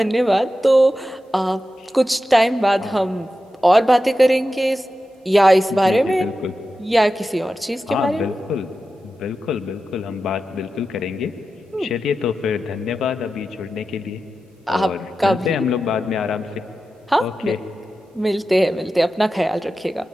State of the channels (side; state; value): both; normal; correlation 0.92